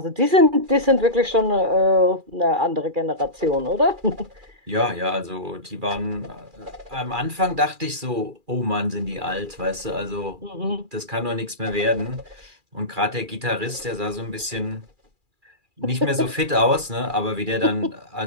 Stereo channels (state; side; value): late; left; 2.4 ms